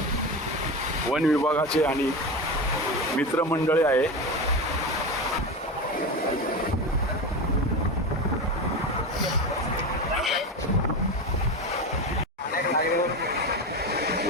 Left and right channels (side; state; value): both; normal; correlation 0.22